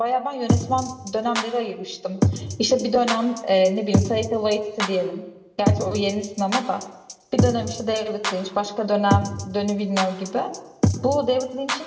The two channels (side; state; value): both; identical; correlation 1.00